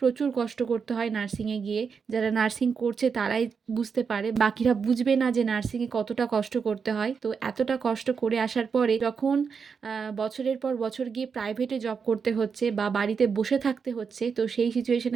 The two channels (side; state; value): left; quieter; 5.9 dB